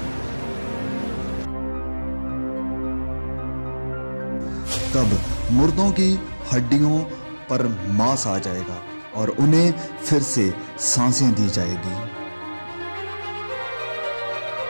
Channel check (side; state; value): both; inverted; correlation -1.00